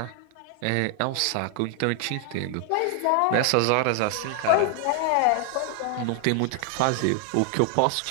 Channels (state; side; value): different; both; correlation 0.00